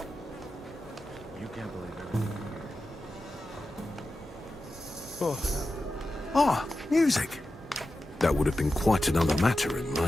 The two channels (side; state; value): both; normal; correlation 0.92